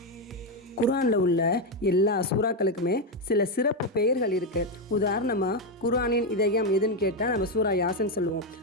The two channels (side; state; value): both; normal; correlation 0.06